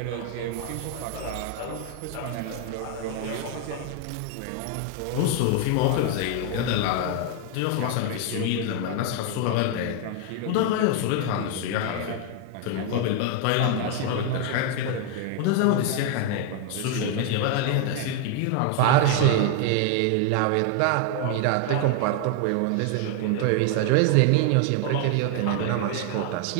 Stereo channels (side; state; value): both; different; correlation 0.00